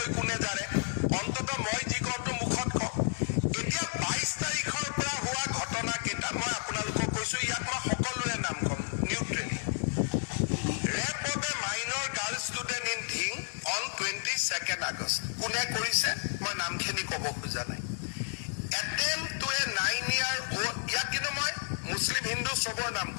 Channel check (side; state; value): right; silent; digital silence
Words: কোনে জাৰে অন্তত মই যি কওঁটো মুখত কওঁ এতিয়া 22 তাৰিখৰ পৰা হোৱা ঘটনা কেইটা মই আপোনালোকক কৈছো ইয়াত মই সকলোৰে নাম কম neutrally rape of a minor girl student in Dhing on 22nd August কোনে কৰিছে মই নামখিনি ক'ব খোজা নাই attempt to a 9-year old ইয়াত কিন্তু মই মুছলিম হিন্দু সবৰ নাম